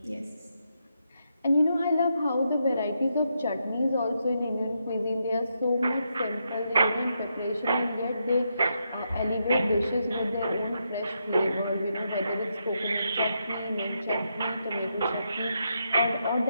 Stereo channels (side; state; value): both; inverted; correlation -0.81